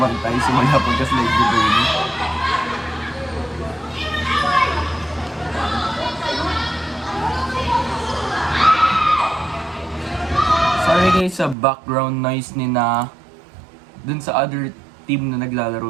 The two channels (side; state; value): left; drops out; at 11.6 s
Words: simula pagka-slide ni Bernie. guys sa background noise ni na dun sa other team na